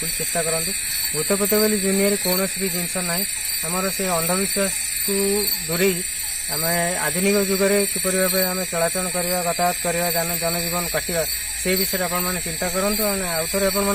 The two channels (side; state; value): both; identical; correlation 1.00